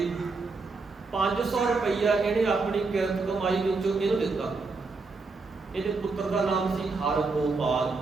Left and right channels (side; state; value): left; quieter; 4.0 dB